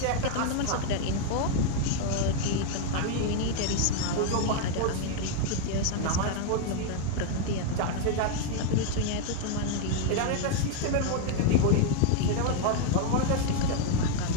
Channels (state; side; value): different; both; correlation 0.00